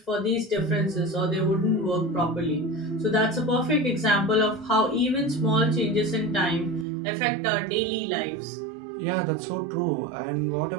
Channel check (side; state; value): left; drops out; at 6.9 s